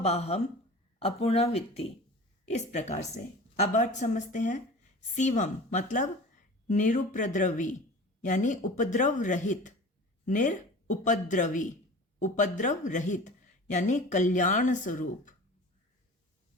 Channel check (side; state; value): both; normal; correlation 0.38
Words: अपूर्णावित्ति। इस प्रकार से अब अर्थ समझते हैं। शिवम मतलब निरुपद्रवी यानी उपद्रव रहित। निरुपद्रवी, उपद्रव रहित यानी कल्याण स्वरूप।